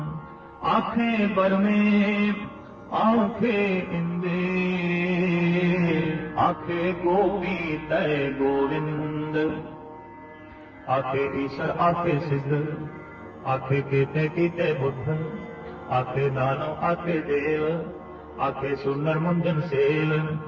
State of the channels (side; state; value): both; identical; correlation 1.00